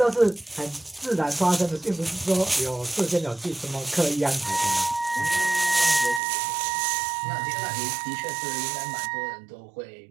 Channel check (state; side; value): drops out; left; at 6.2 s